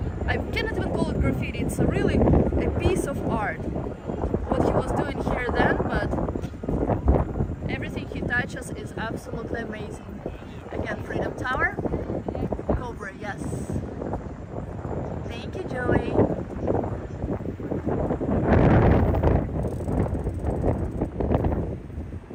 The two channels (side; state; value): both; identical; correlation 1.00